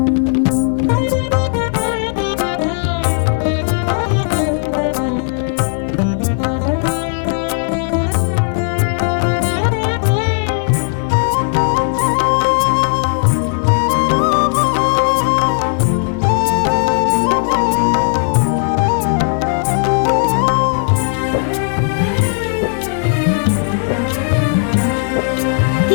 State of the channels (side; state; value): right; silent; 55 dB below the other